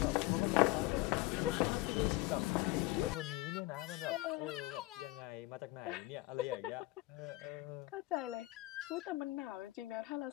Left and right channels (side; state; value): right; quieter; 19.5 dB